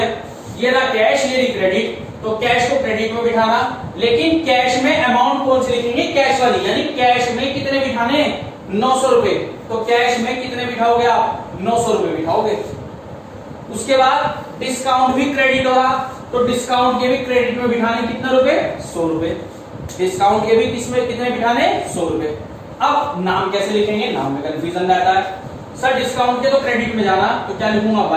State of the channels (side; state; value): both; identical; correlation 1.00